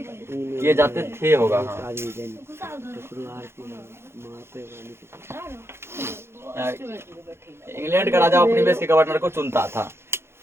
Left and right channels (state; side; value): late; left; 0.12 ms